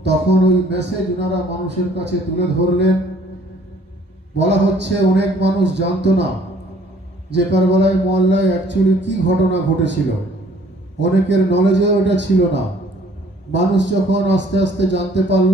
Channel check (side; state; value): both; normal; correlation 0.58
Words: তখন ওই মেসেজ ওনারা মানুষের কাছে তুলে ধরলেন। বলা হচ্ছে অনেক মানুষ জানতো না যে কারবালায় মহল্লায় অ্যাকচুয়ালি কি ঘটনা ঘটেছিল, অনেকের নলেজে ওটা ছিল না। মানুষ যখন আস্তে আস্তে জানতে